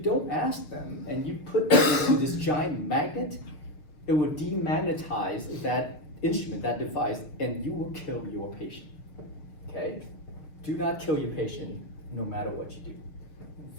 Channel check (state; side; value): late; right; 6.6 ms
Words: ask them and you put them into this giant magnet, it will demagnetize that instrument, that device, and you will kill your patient. Okay? Do not kill your patient no matter what you do.